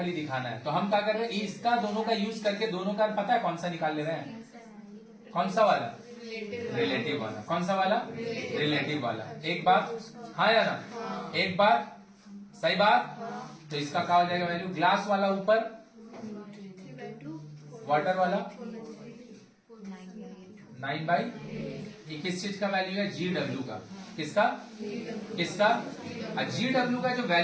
दिखाना है, तो हम क्या कर रहे हैं, इसका दोनों का यूज करके दोनों का पता है कौन सा निकाल ले रहे हैं? कौन सा वाला? रिलेटिव वाला। कौन सा वाला? रिलेटिव वाला। एक बात हाँ या ना? एक बात सही बात। तो इसका क्या हो जाएगा वैल्यू? ग्लास वाला ऊपर, वाटर वाला 9/, ये किस चीज का वैल्यू है? GW का। किसका? GW का जो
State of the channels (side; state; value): both; identical; correlation 1.00